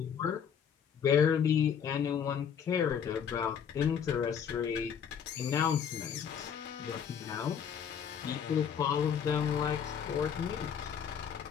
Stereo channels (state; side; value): quieter; right; 7.8 dB